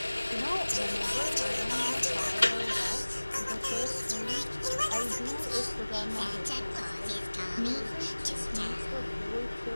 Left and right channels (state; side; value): inverted; both; correlation -1.00